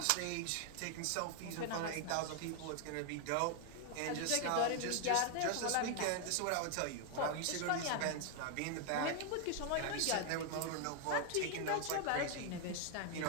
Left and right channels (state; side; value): different; both; correlation 0.00